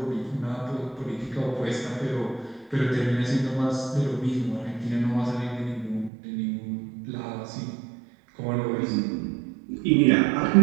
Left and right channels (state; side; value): drops out; left; at 6.1 s